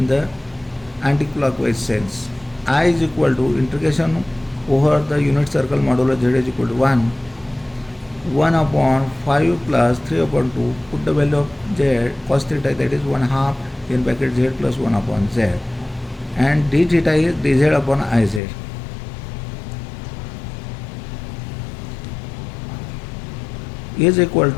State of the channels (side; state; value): right; drops out; at 18.4 s